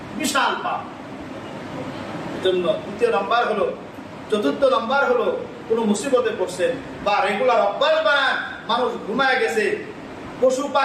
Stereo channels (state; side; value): identical; both; correlation 1.00